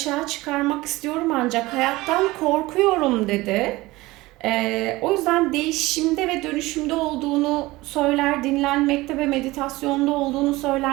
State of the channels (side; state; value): left; quieter; 19.9 dB